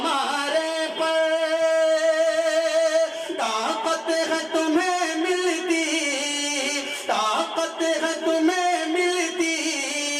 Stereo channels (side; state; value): both; identical; correlation 1.00